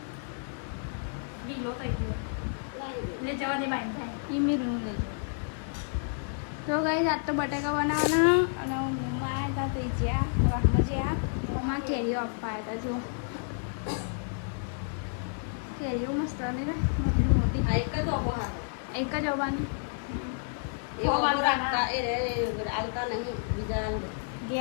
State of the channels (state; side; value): silent; right; digital silence